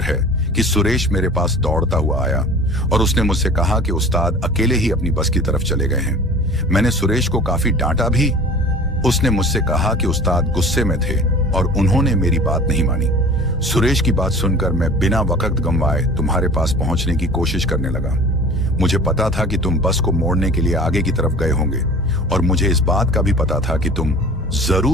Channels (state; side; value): normal; both; correlation 0.42